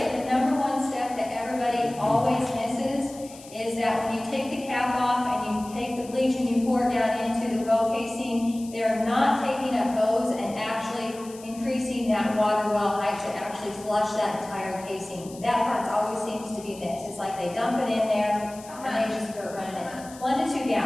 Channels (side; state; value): left; noise; hiss, 19 dB below the sound